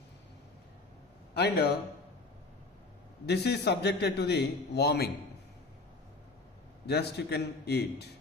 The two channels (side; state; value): right; quieter; 3.4 dB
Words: And this is subjected to the warming. Just you can eat.